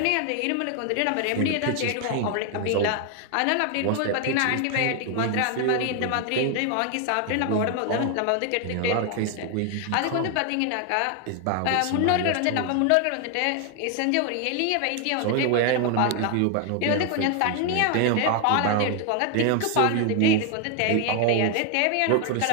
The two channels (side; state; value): both; different; correlation 0.01